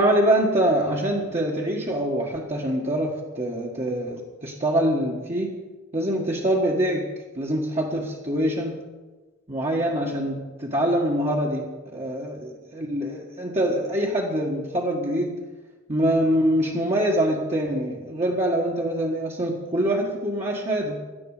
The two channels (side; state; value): both; normal; correlation 0.50